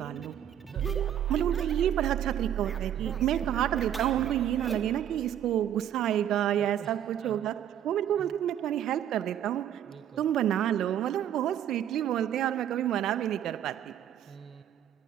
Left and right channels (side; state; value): left; quieter; 10.4 dB